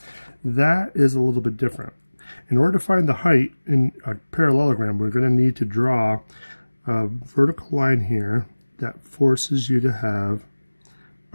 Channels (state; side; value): inverted; both; correlation -1.00